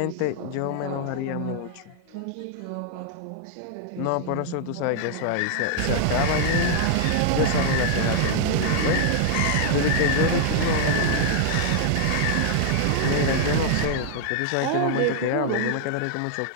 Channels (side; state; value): both; different; correlation 0.00